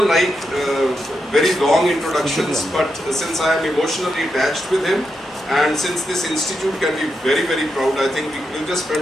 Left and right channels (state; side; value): normal; both; correlation 0.85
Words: like very long introductions, but since I am emotionally attached with him, and since this institute can be very, very proud, I think we'll just